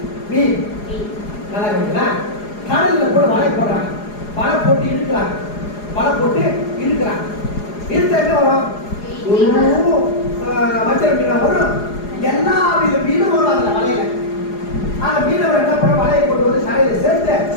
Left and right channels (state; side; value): late; right; 4.8 ms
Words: மீன். நல்லா கவனிங்களா? கடல்ல கூட வலை போடுறாங்க. வலை போட்டு இழுக்கிறாங்க. வலை போட்டு இழுக்கிறாங்க. இழுத்த என்ன வரும்? வஞ்சர மீனா வரும். எல்லா வித மீனும் வரும் அதுல வலையில. அந்த மீனவர் என்ன பண்ண வலையை கொண்டு வந்து கரையில சேர்த்து